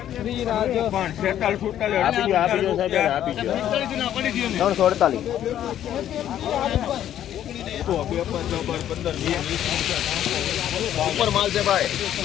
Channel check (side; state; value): right; quieter; 11.1 dB